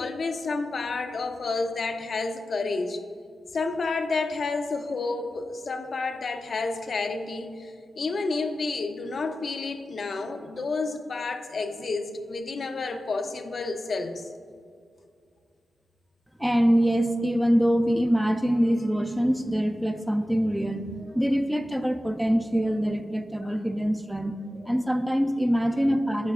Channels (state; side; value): normal; both; correlation 0.94